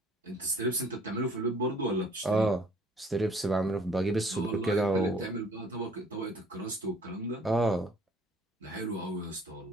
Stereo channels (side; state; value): both; normal; correlation 0.56